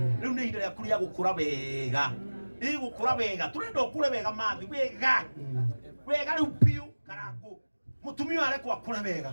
riu ni ihinda rĩaku rĩa gũkũra wega gũkũra wega turenda ũkũre wega mathi wega wega rĩu piũ karangu mũtumia arekwo akũre wega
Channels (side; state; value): both; inverted; correlation -1.00